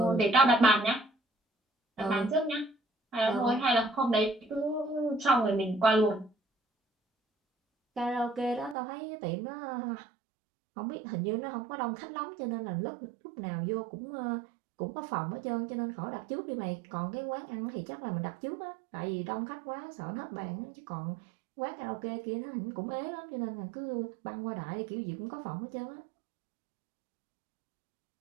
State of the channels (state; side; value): drops out; left; at 8.8 s